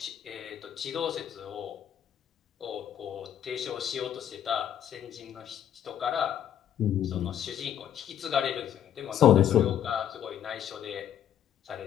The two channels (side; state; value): right; quieter; 10.0 dB